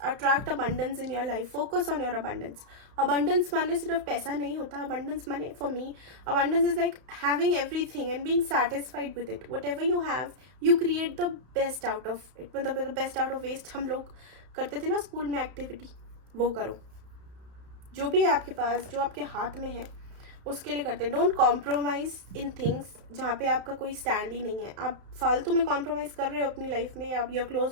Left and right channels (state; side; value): late; left; 32 ms